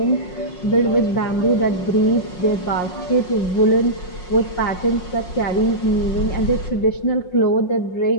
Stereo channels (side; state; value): right; late; 5.6 ms